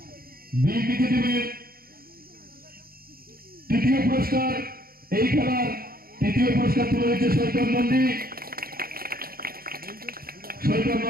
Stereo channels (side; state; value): left; late; 0.43 ms